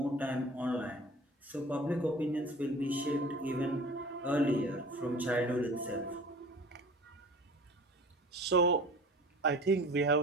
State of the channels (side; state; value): both; normal; correlation 0.42